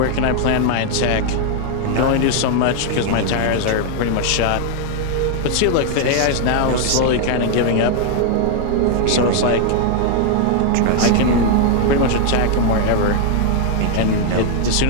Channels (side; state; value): both; different; correlation 0.00